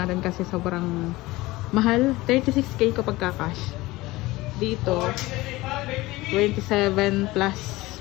kasi sobrang mahal. 36k kapag ka-cash. Dito 27 plus.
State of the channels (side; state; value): right; quieter; 19.7 dB